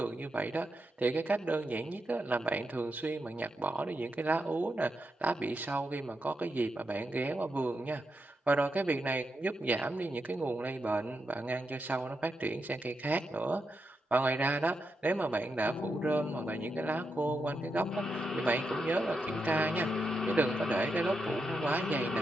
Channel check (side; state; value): both; normal; correlation 0.85